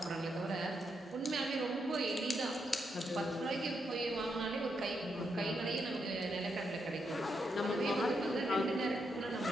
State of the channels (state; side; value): normal; both; correlation 0.81